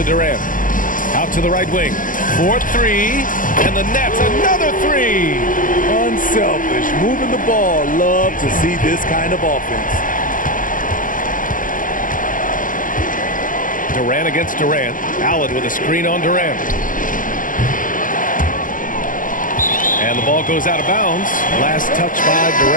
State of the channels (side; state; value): right; late; 0.38 ms